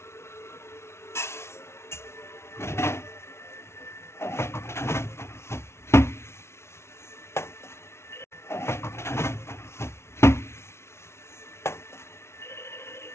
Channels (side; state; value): right; late; 0.13 ms